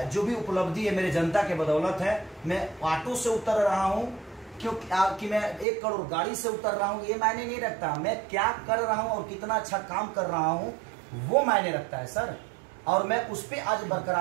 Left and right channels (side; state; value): left; drops out; at 5.7 s